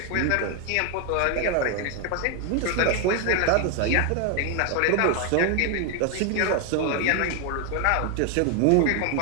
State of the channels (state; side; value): different; both; correlation 0.01